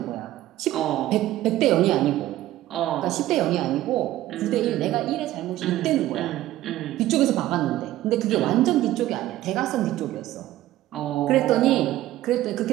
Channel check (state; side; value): quieter; left; 14.8 dB